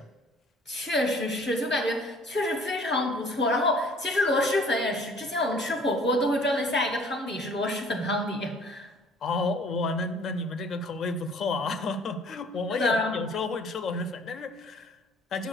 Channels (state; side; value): normal; both; correlation 0.54